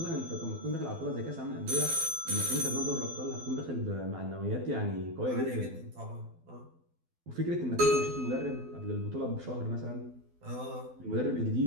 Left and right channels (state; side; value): late; left; 12 ms